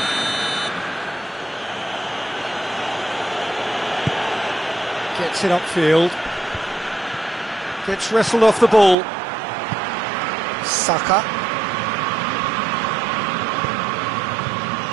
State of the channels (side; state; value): left; drops out; at 9.0 s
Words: Gets it upfield. Gets wrestled off the ball. Saka.